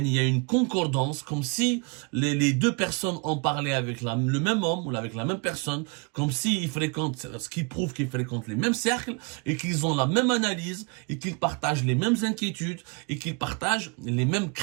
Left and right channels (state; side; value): quieter; left; 33.3 dB